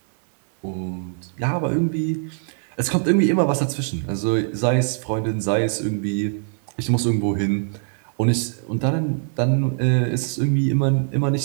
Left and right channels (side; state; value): left; silent; digital silence